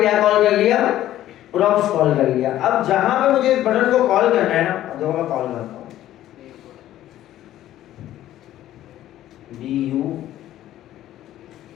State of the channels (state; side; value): quieter; right; 13.2 dB